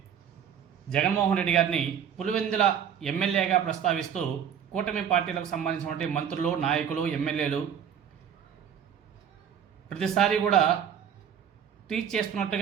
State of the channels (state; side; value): quieter; left; 8.4 dB